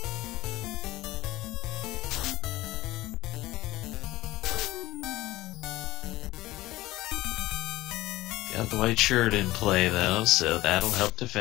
Got the white shirt in play, though, so that'll help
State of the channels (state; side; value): quieter; right; 17.7 dB